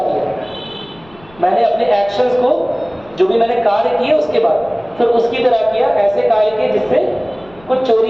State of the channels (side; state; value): left; noise; rumble, 26 dB below the sound